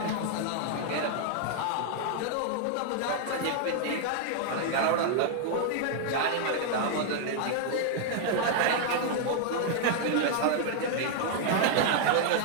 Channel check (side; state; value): both; different; correlation 0.00